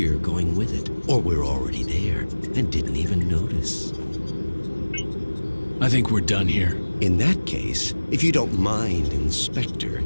going with it. Or we're already there, and didn't even notice. I think we're done here. In that case, if you don't mind, Inspector,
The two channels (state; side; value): inverted; both; correlation -1.00